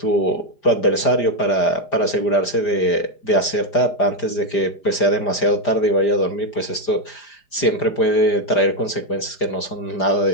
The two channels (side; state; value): right; late; 4.9 ms